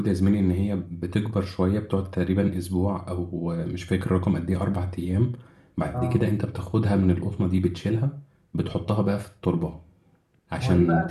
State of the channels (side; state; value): both; identical; correlation 1.00